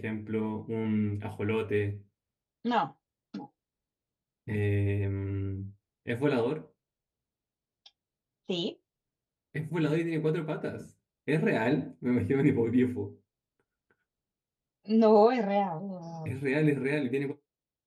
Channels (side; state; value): both; identical; correlation 1.00